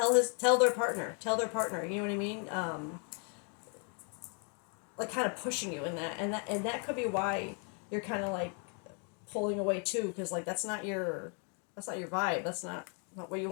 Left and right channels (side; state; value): right; quieter; 39.6 dB